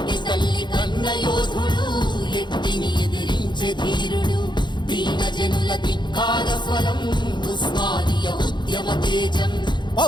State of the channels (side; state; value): right; late; 0.22 ms